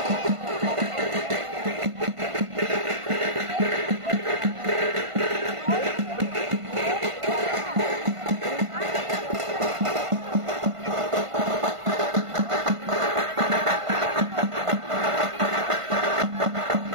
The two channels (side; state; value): left; late; 1.5 ms